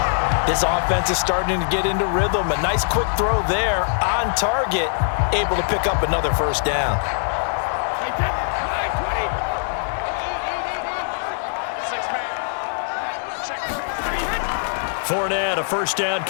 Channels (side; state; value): right; silent; digital silence